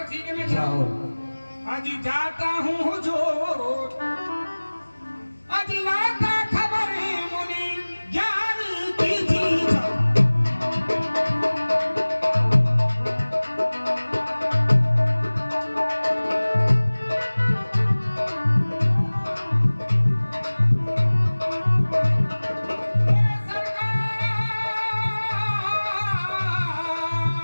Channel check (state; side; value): inverted; both; correlation -1.00